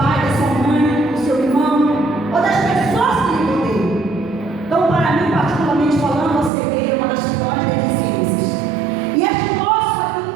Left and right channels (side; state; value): left; drops out; at 6.5 s